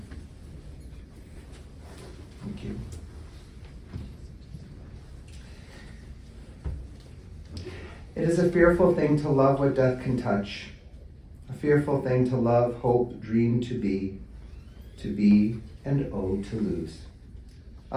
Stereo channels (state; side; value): identical; both; correlation 1.00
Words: Thank you. It is a fearful thing to love what death can touch. A fearful thing to love, hope, dream to be, and oh, to lose.